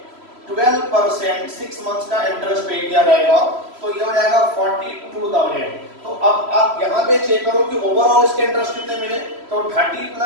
12% 6 मंथ्स का इंटरेस्ट पे किया जाएगा, तो ये हो जाएगा 42,000। तो अब आप यहाँ पे चेक करो कि ओवरऑल इसके इंटरेस्ट कितने मिले, तो 30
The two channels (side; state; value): left; late; 3.0 ms